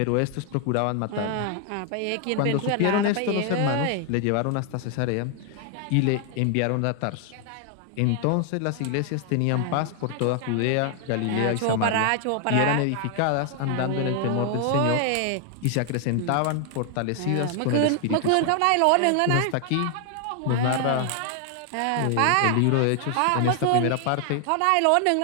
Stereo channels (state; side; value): different; both; correlation 0.00